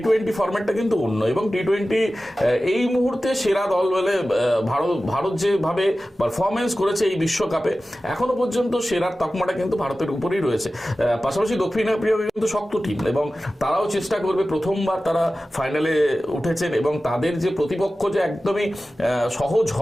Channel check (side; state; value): both; normal; correlation 0.95